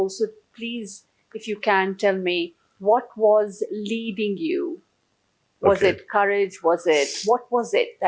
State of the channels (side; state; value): both; identical; correlation 1.00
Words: please, if you can, tell me, what was leading you? Was Okay. it courage? What was it